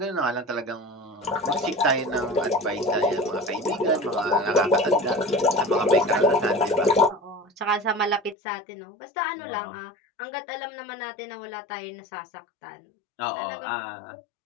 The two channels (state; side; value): drops out; right; at 8.3 s